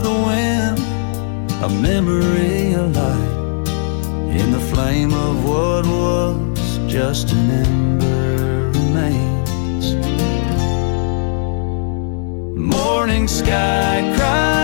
the wind, a memory alight in the flame of what was just an ember remains. Morning sky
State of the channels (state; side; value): silent; right; digital silence